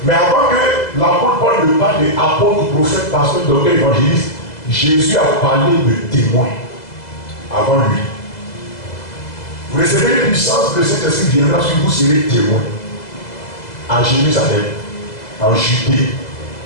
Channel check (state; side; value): late; right; 2.0 ms